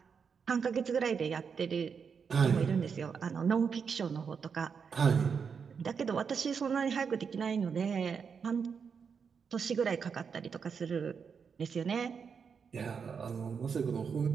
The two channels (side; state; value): left; quieter; 6.2 dB